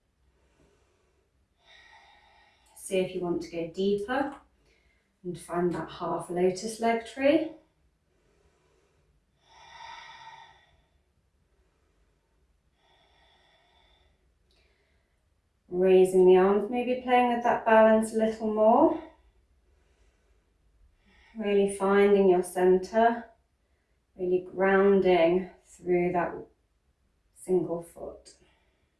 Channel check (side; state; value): both; identical; correlation 1.00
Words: See if you want to go deeper and find that half lotus leg tree. Raising the arms, maybe playing with that balance a little more. Really finding your center, really grounding through that single foot.